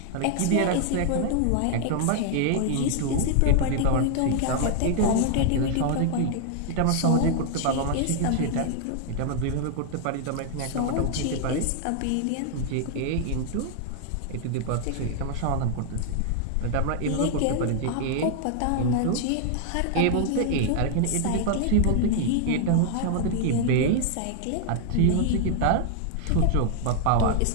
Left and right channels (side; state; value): both; different; correlation 0.00